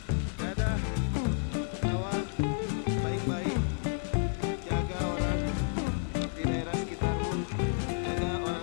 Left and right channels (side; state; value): right; silent; digital silence